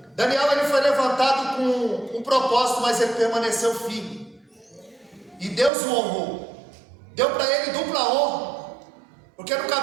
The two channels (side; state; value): left; drops out; at 5.7 s